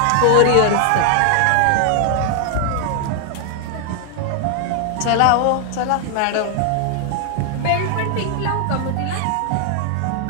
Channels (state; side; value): different; both; correlation 0.00